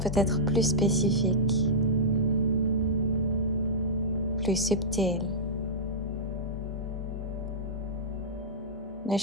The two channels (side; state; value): both; normal; correlation -0.13